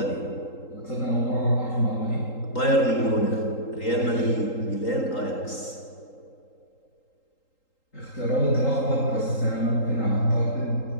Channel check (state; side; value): late; right; 3.8 ms